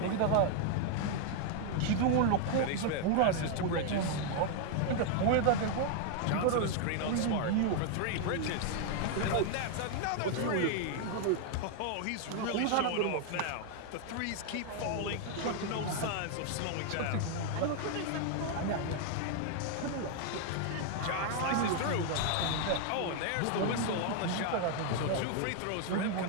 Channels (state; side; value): different; both; correlation 0.00